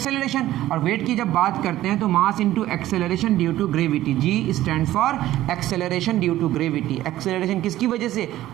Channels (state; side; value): quieter; left; 14.5 dB